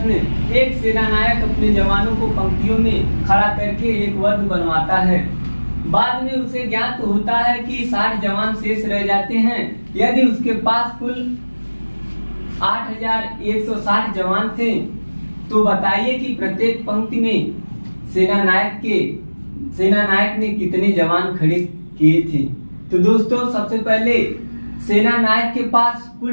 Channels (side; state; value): both; inverted; correlation -1.00